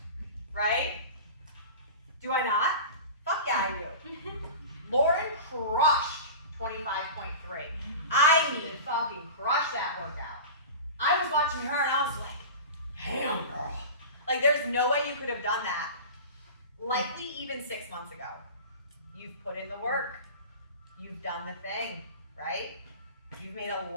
right? Do I not? Fuck yeah, I do. Lauren crushed 25.3. I mean, fucking crushed that workout. I was watching her and I was like, damn, girl. Like, there's no way you could have done that. Likely even 6 months ago. You've put in the work. You've done the thing, right? You've made a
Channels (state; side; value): inverted; both; correlation -0.32